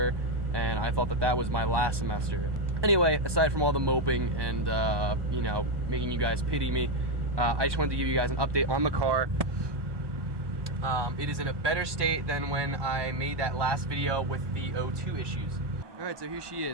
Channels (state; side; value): late; left; 1.2 ms